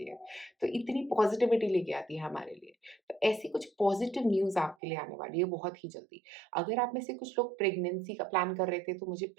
है। तो इतनी पॉज़िटिविटी लेके आती है हमारे लिए। तो ऐसी कुछ पॉज़िटिव न्यूज़ आपके लिए आने वाली है बहुत ही जल्दी। अगर आप में से कुछ लोग प्रेगनेंसी का प्लान कर रहे थे, तो मुझे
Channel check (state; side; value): drops out; left; at 4.8 s